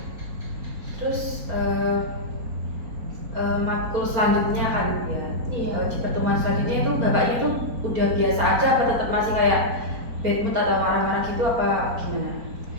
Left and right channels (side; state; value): left; late; 4.2 ms